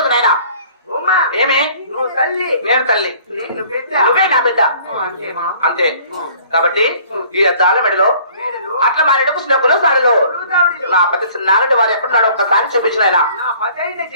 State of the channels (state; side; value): inverted; both; correlation -0.54